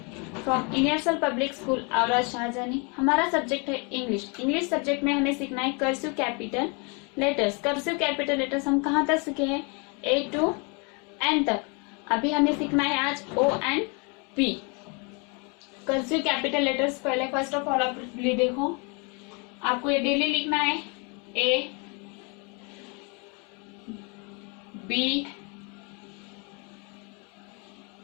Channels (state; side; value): quieter; right; 33.1 dB